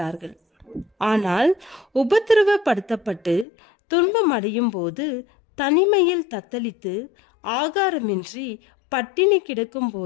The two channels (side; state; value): right; drops out; at 3.5 s